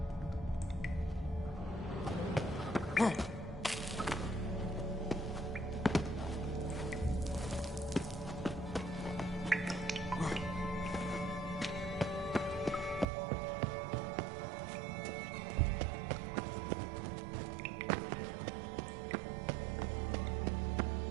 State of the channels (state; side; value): drops out; left; at 13.1 s